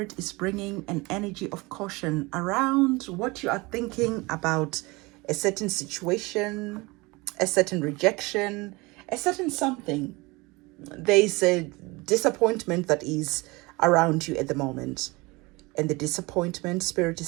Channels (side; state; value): left; quieter; 24.2 dB